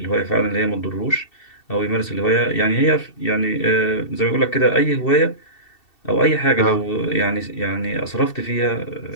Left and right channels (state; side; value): late; right; 2.7 ms